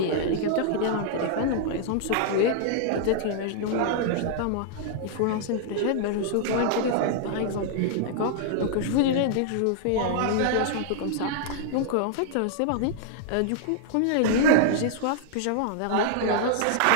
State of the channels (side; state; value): both; different; correlation -0.01